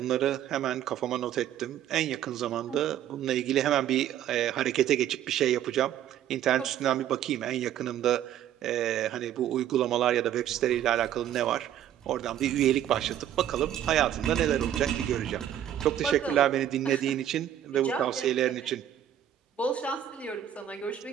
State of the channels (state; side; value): quieter; left; 10.9 dB